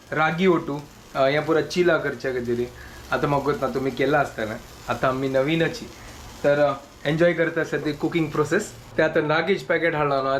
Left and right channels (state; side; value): identical; both; correlation 1.00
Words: रागी ओटू हें पुरा चिला करच्या खातीर आतां म्हाका ना तुमी केला आसतना आतां आमी नवीनची तर एन्जॉय करता सद्या कुकिंग प्रोसेस ते आतां रागीच पॅकेट हाडला न्हू